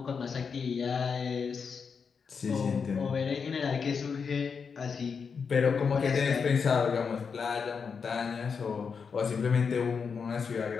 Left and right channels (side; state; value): right; quieter; 5.8 dB